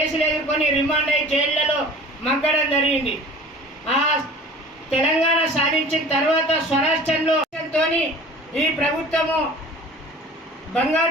ఎదుర్కొని రిమాండ్ అయ్యి జైళ్లలో మగ్గడం జరిగింది. ఆ తెలంగాణ సాధించిన తర్వాత స్వరాష్ట్రంలో ఈ ప్రభుత్వము బంగారు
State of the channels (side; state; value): both; normal; correlation 0.43